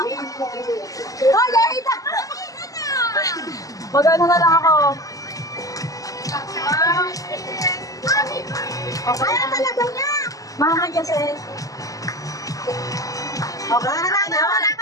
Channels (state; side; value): late; right; 0.17 ms